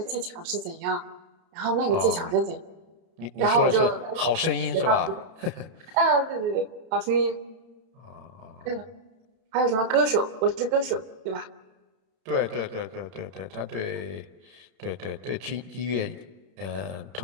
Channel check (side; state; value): left; late; 31 ms